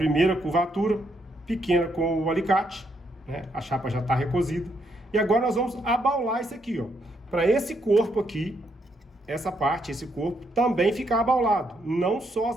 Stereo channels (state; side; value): normal; both; correlation 0.76